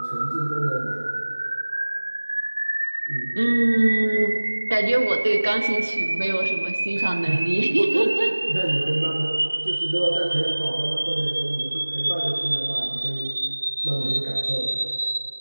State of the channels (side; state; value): both; inverted; correlation -1.00